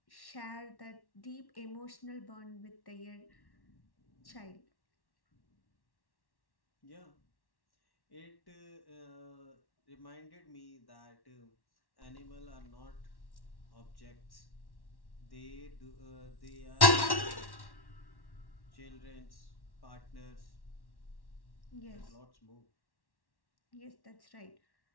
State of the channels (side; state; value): right; late; 1.1 ms